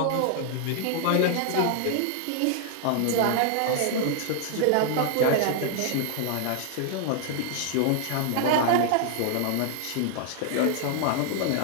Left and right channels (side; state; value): both; different; correlation 0.00